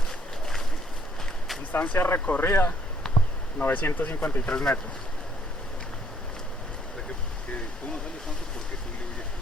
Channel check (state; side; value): normal; both; correlation 0.65